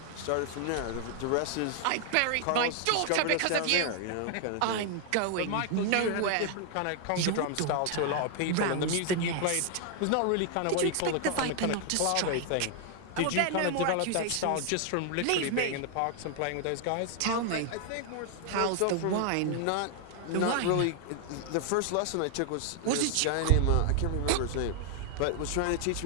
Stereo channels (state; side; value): different; both; correlation 0.00